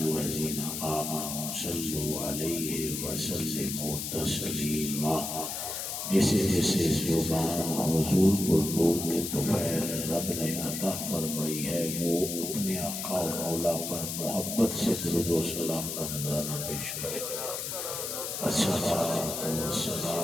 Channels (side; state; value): left; noise; hiss, 4 dB below the sound